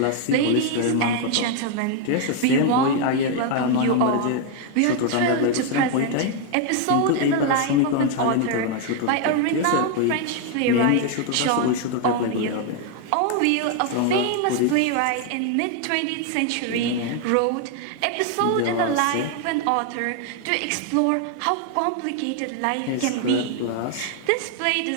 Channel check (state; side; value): different; both; correlation 0.01